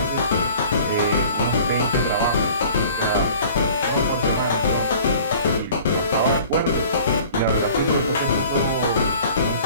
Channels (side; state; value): both; inverted; correlation -0.48